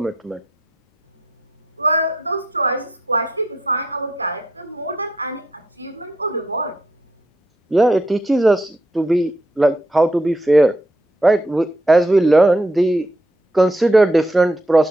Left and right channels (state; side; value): normal; both; correlation 0.76